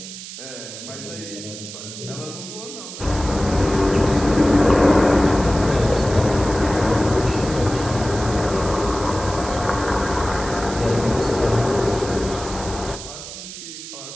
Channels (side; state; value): right; noise; hiss, 12 dB below the sound